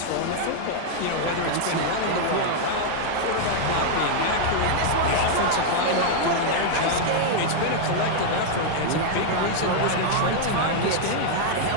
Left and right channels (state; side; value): different; both; correlation -0.01